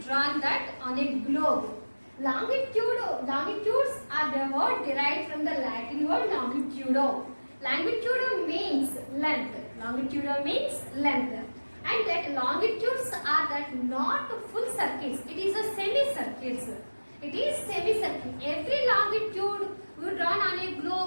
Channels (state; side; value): inverted; both; correlation -1.00